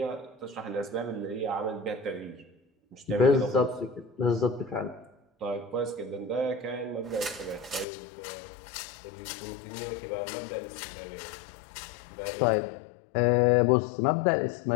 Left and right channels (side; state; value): right; drops out; at 7.9 s